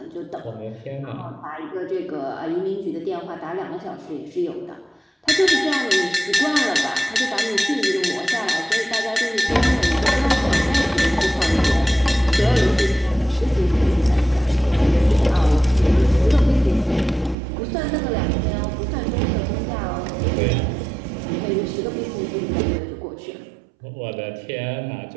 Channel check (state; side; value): drops out; left; at 17.4 s